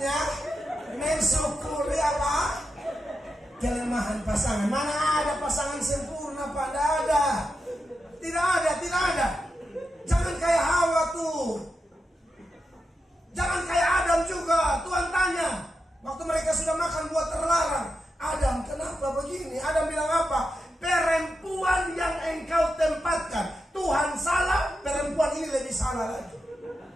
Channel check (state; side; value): normal; both; correlation 0.88